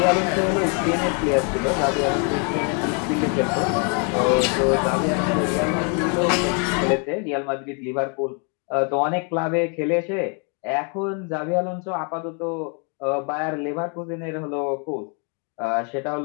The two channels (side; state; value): right; quieter; 38.0 dB